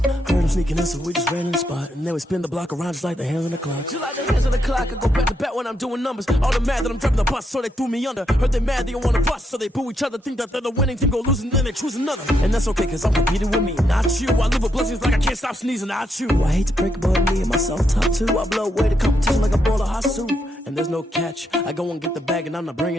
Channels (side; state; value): both; normal; correlation 0.79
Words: Heard him sneaking in, so we just ran in the spot. And then we spin the block around just like the hands on the clock. Just like the hands on the clock, I go back to back when I'm doing numbers. All the mad that I'm driving the bus, so they threw me under. Heard they mad, they don't wanna bust, so they boo each other. Think that they're the winning team, go losing, then they choose another. And that's okay, cause I'm competing with me, not you. I live with blessings like I can't stop sneezing, not you. I hate to break it, but me and myself top two. I blow away the competition like a bowl of hot soup. And there's no catch. I go and get the bag and I'm not